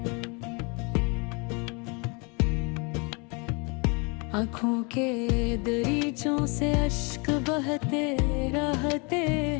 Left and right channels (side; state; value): right; quieter; 31.5 dB